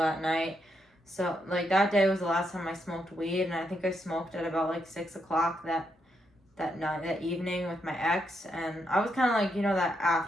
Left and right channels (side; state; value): both; normal; correlation 0.80